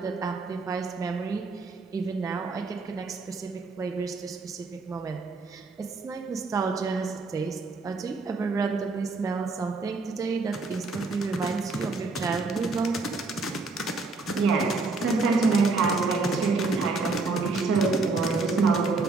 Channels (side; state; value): left; quieter; 3.8 dB